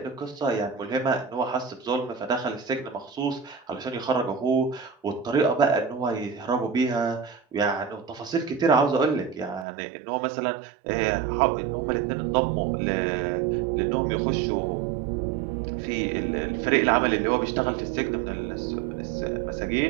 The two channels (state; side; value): drops out; left; at 9.7 s